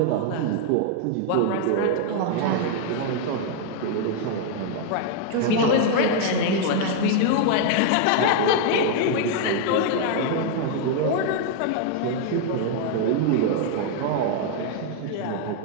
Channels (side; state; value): both; different; correlation 0.00